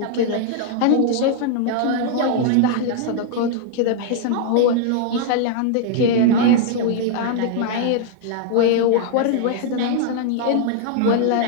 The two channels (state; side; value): different; both; correlation 0.00